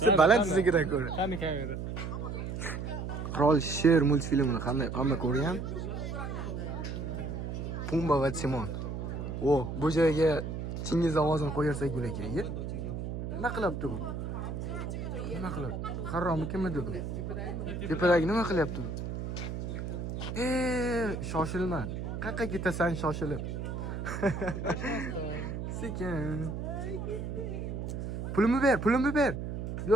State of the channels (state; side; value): noise; right; hum, 5 dB below the sound